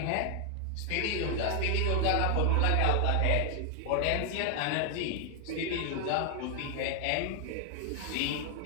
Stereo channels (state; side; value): different; both; correlation 0.00